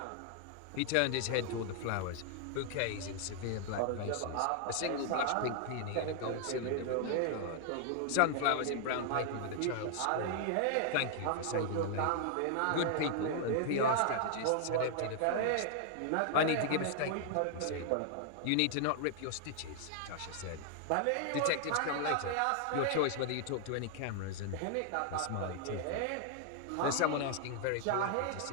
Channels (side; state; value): both; different; correlation 0.00